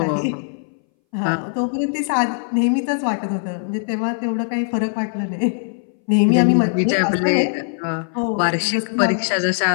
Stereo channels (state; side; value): silent; right; 62 dB below the other